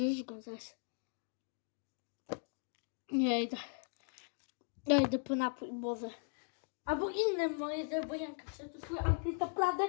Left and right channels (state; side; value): silent; right; 52 dB below the other